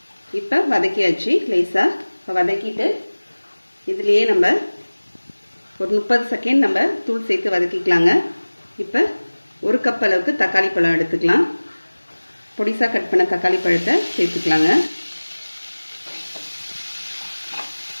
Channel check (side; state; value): both; inverted; correlation -1.00